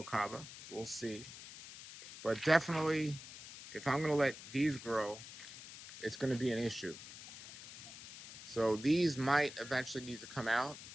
We'll see. But definitely, if I'm going to let these grow, it's going to be an issue. So these might eventually need to come out,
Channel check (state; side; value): noise; left; hiss, 14 dB below the sound